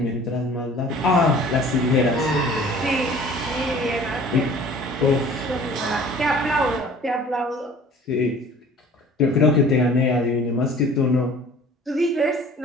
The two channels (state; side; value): normal; both; correlation 0.48